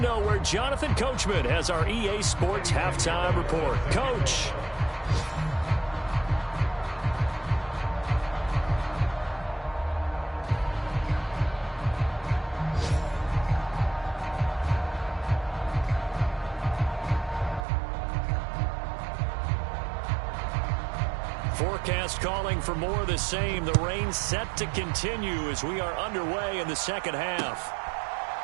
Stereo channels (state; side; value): drops out; left; at 17.7 s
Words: where Jonathan Coachman has our EA Sports halftime report. Coach. Forecast calling for more of the same. The rain set to continue as we are underway in the second half.